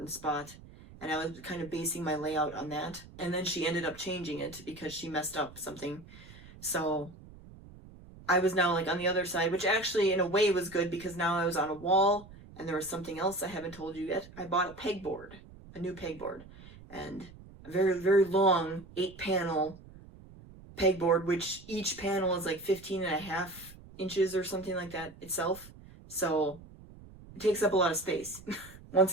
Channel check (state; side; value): noise; right; rumble, 19 dB below the sound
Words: spot, and I was kind of basing my layout on that. And then she ended up changing it because she messed up something. So I was now like on the other side, which actually in a way was good because now I was on a wall, and there was something else I haven't told you yet. I bought a new pegboard, and a very, very long 8-panel pegboard, which each panel is like 15.5 inches or something like that itself. So it takes up a lot of space once